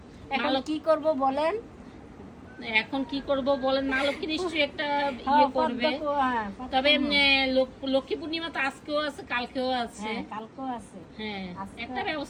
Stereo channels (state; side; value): identical; both; correlation 1.00